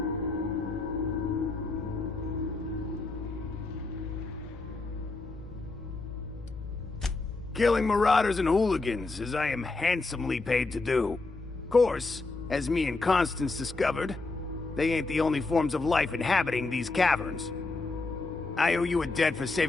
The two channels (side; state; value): right; quieter; 3.5 dB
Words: Killing marauders and hooligans, as I am handsomely paid to do. Of course, as me and Constance discovered, they ain't the only forms of life inhabiting these caverns. I owe you a debt for